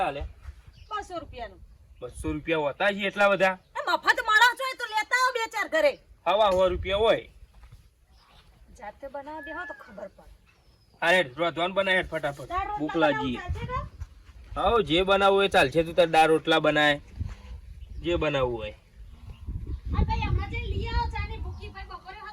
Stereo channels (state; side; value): identical; both; correlation 1.00